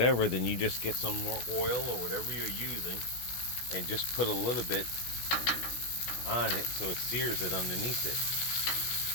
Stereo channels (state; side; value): late; right; 16 ms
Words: then you just get some more oil or whatever you're using and just put a little bit on it so it sears it underneath it.